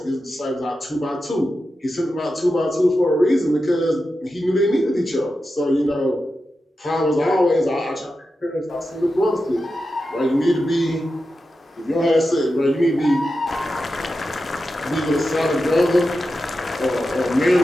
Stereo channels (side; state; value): both; normal; correlation 0.90